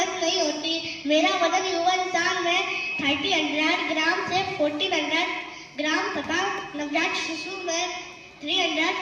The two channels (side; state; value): both; identical; correlation 1.00